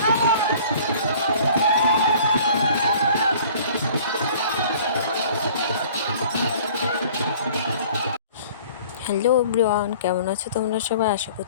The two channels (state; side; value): inverted; both; correlation -0.50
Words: everyone, কেমন আছো তোমরা সবাই? আশা